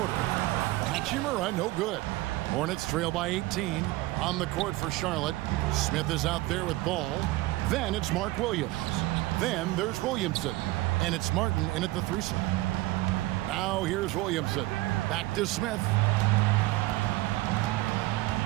Hachimura, no good. Hornets trail by 18. On the court for Charlotte. Smith is out there with ball. Then it's Mark Williams. Then there's Williamson. And it's Martin in at the 3 slot. Now here's Williamson. Back to Smith.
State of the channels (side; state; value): left; quieter; 18.6 dB